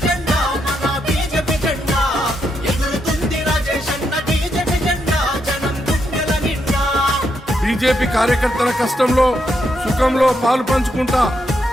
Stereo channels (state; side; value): normal; both; correlation 0.80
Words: జెండా, మన బీజేపీ జెండా ఎగురుతుంది రాజేష్ అన్న బీజేపీ జెండా జనం గుండెల నిండా. బీజేపీ కార్యకర్తల కష్టంలో సుఖంలో పాలు పంచుకుంటా,